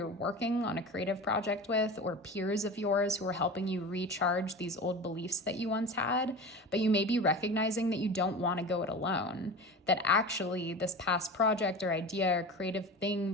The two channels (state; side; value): normal; both; correlation 0.31